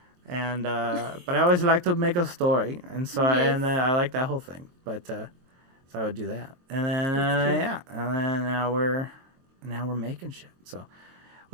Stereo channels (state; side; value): late; left; 23 ms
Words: and but I always like to make a story, and so I like that whole thing. But so I would do that, and then and then now we're making shit. So.